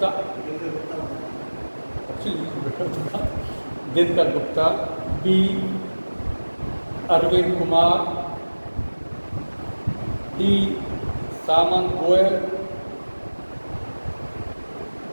Dinkar Gupta, B Arvind Kumar, D Samant Goel,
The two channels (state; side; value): inverted; both; correlation -1.00